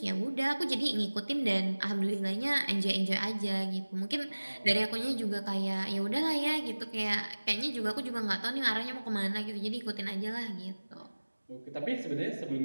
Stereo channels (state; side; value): inverted; both; correlation -1.00